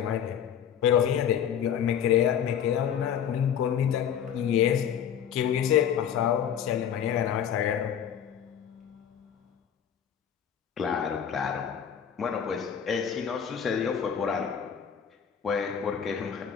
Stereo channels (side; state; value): right; quieter; 8.6 dB